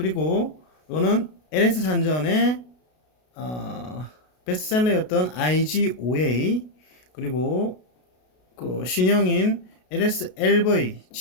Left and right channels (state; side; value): late; right; 33 ms